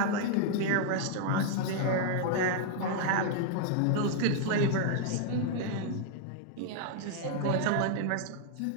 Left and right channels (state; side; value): different; both; correlation 0.00